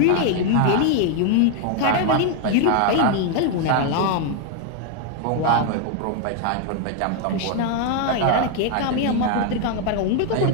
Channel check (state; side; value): different; both; correlation 0.00